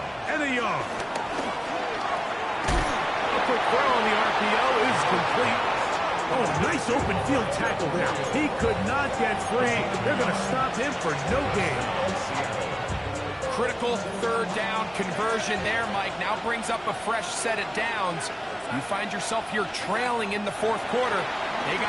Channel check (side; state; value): both; identical; correlation 1.00